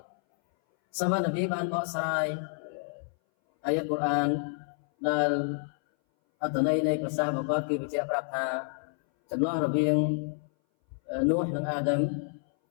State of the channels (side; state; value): right; silent; 59 dB below the other